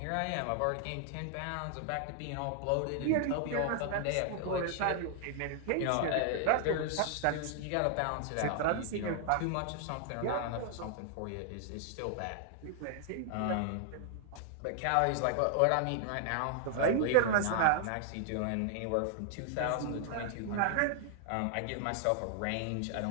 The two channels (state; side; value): different; both; correlation 0.00